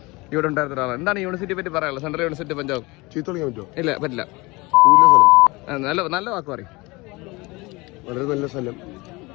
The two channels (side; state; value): right; quieter; 23.9 dB